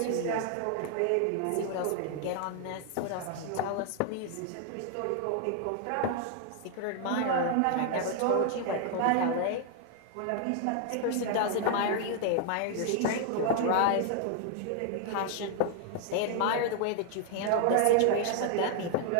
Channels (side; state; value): both; different; correlation 0.00